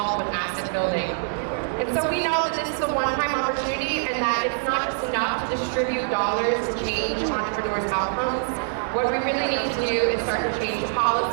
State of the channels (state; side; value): silent; left; 62 dB below the other